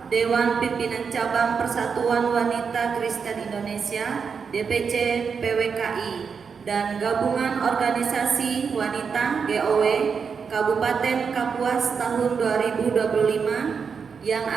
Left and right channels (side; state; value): left; quieter; 6.0 dB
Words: Dewan Pimpinan Cabang Persatuan Wanita Kristen Indonesia DPC PWKI dan Gabungan Organisasi Wanita GOW Kabupaten Kapuas tahun 2025 yang